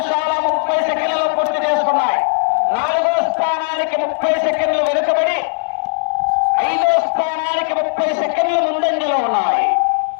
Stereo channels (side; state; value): right; silent; digital silence